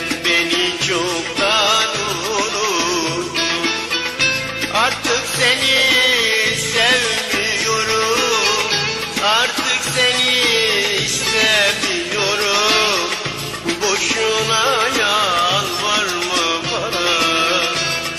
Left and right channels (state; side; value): identical; both; correlation 1.00